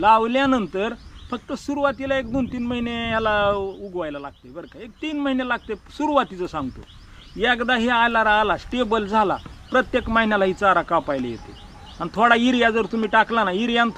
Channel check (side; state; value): both; identical; correlation 1.00